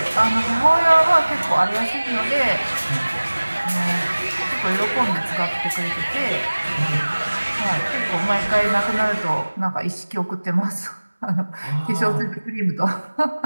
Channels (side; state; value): both; inverted; correlation -1.00